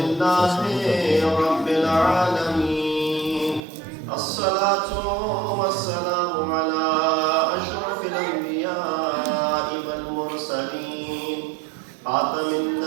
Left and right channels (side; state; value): left; drops out; at 3.6 s